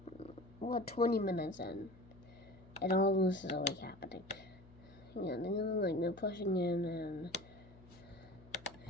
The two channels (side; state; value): left; noise; hum, 22 dB below the sound